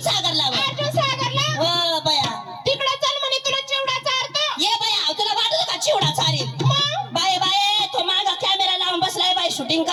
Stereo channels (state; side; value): identical; both; correlation 1.00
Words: सागरला बा. अर्जुन सागरला हो बया तिकडं चल म्हणे तुला चिवडा चारतो. ये बया तुला वाटत का चिवडा चारेल? मग बाय बाय तो मागा कॅमेरा लावून बसलाय बाय शूटिंग